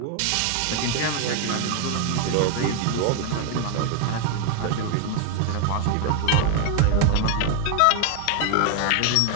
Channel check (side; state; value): both; different; correlation 0.01